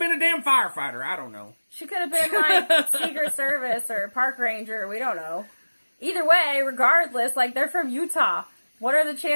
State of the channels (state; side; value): inverted; both; correlation -1.00